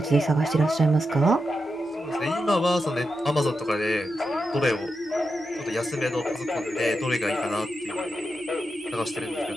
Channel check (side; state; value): both; normal; correlation 0.87